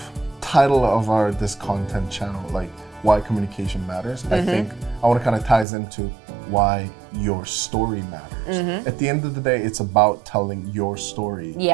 title of this content channel, like why communication matters, I think I want to kind of ties into why your story matters. At the end of the day, it's about telling your story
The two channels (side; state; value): left; drops out; at 5.7 s